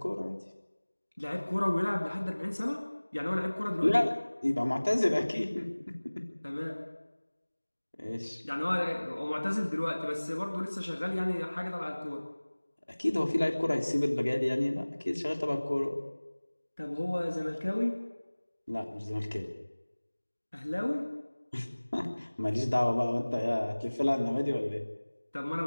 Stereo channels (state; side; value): inverted; both; correlation -1.00